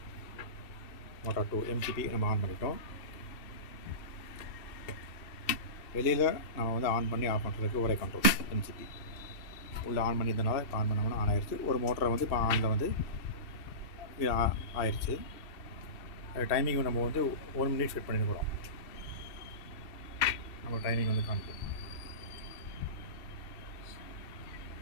motor 2 MCP நம்ம on பண்ணிட்டோம். வெளியில் நம்ம வந்து ஆன் பண்ணி ஆஃப் பண்ணுறதுக்கு ஒரே கண்ட்ரோல் MCP. உள்ளே ஆன் பண்ணியிருந்தனால இப்போ ஆன் பண்ணோம்னா ஆன் ஆயிடுச்சு. ஒரு மோட்டரை வந்து இப்போ ஆனில் வந்து ஆயிடுச்சு. டைமிங் நம்ம வந்து 1 minute செட் பண்ணியிருக்கிறோம். நம்ம டைமிங் வந்து காமிக்கும்.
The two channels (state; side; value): late; right; 2.7 ms